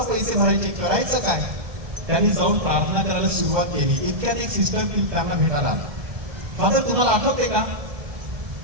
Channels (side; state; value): left; late; 1.2 ms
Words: पैसे भरायचे, करायचं काय? त्यांनी जाऊन प्रार्थना करायला सुरुवात केली. इतक्यात एक सिस्टर त्यांना भेटायला आला. फादर, तुम्हाला आठवते का,